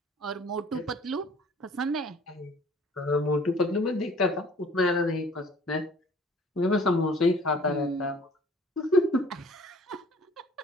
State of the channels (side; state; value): both; normal; correlation 0.53